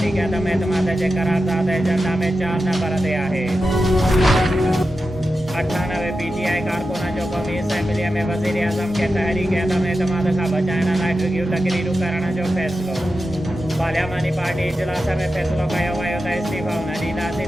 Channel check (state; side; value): normal; both; correlation 0.91